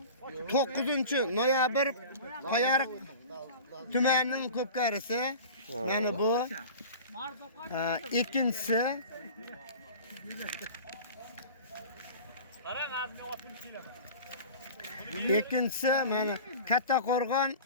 9-noyabr Qoyariq tumanining Ko'pkarisi. Mana bu ikkinchisi. Ikkinchisi mana Kattaqo'rg'on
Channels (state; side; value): inverted; both; correlation -0.37